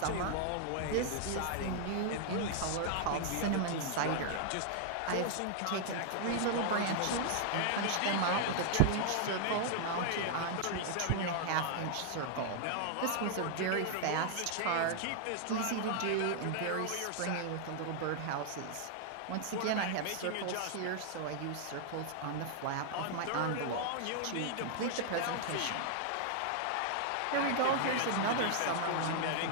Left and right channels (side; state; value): both; different; correlation -0.01